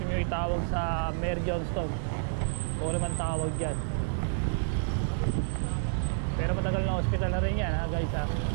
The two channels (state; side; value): silent; left; digital silence